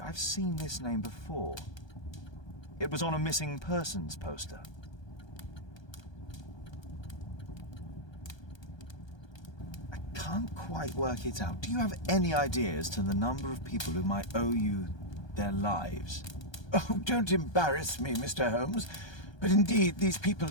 I've seen this name before. It was on a missing persons poster. I can't quite work it out. Do you have any idea as to the number of people who might owe you their lives? Oh, don't embarrass me, Mr. Holmes. But indeed, these people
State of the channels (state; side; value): late; right; 1.2 ms